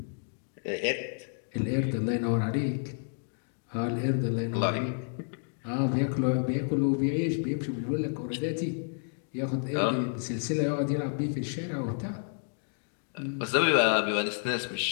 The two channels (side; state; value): right; silent; digital silence